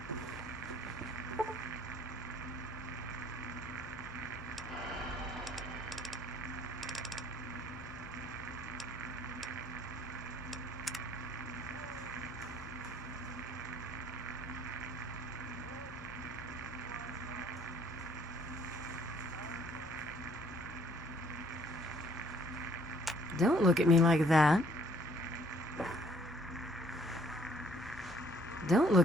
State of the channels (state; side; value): normal; both; correlation 0.61